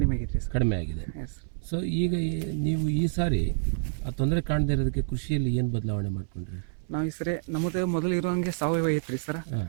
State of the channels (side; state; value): left; silent; 58 dB below the other